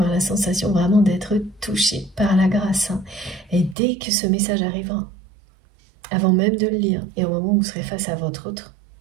la sensation vraiment d'être touché par la grâce. Et dès que ce message arrivera, avant même de le lire, et au moment où vous serez face à votre autre,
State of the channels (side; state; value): left; drops out; at 3.8 s